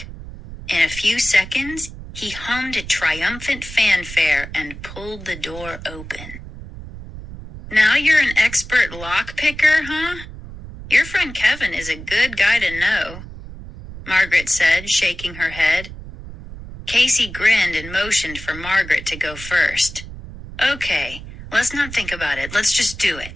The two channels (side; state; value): right; noise; rumble, 13 dB below the sound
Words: In a few seconds, he hummed a triumphant fanfare and pulled the door open. Now you're an expert lock picker, huh? Your friend Kevin is a good guy to know, Margaret said, shaking her head. Casey grinned and motioned for Margaret to go first. Okay, let's not think about it. Let's just do